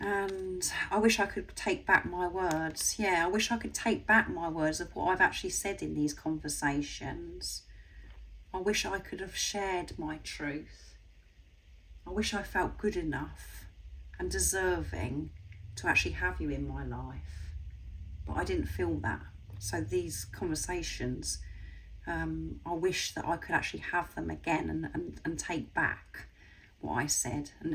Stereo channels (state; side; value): identical; both; correlation 1.00